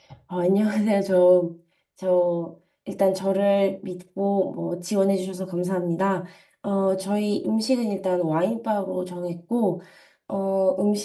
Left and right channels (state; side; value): identical; both; correlation 1.00